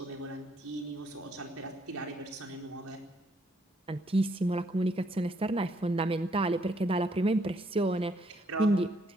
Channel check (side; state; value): both; normal; correlation 0.71